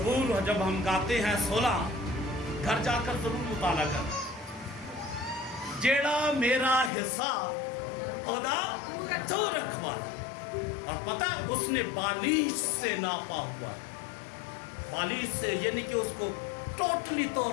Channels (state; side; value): drops out; right; at 6.9 s